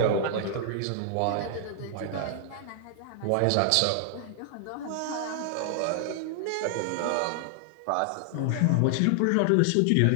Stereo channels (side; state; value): both; different; correlation 0.00